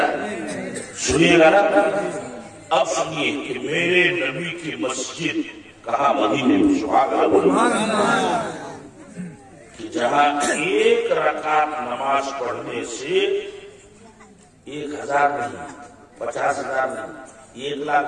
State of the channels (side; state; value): both; identical; correlation 1.00